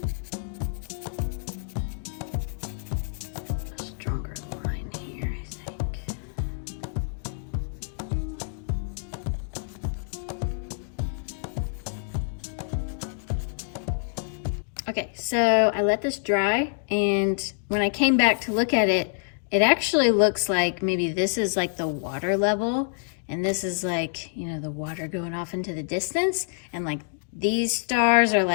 A stronger line here, I think. Okay, so I let this dry, and when I came back to look at it, it actually looks like maybe this is like the water level, and this is like, you know, the water going off into the distance, and like these stars are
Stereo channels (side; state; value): right; silent; digital silence